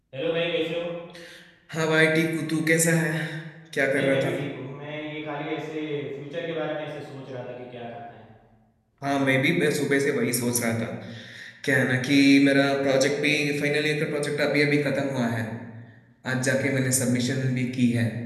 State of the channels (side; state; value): both; identical; correlation 1.00